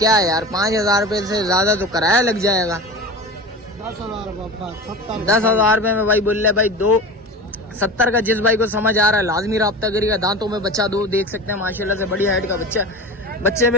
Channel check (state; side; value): normal; both; correlation 0.31